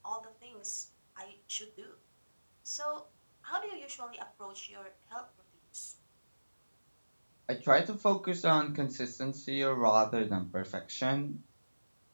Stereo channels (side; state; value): both; inverted; correlation -1.00